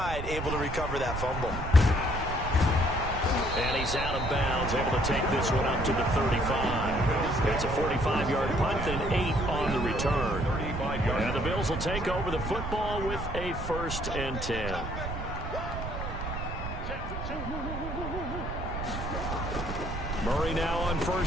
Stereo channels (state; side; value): noise; right; rumble, 6 dB below the sound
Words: able to recover that fumble. And he's out of bounds, able to take this one up to the 35. It's a 45-yard punt, then 8 on the return. And the Bills will take over the football with a 1st and 10. Murray now on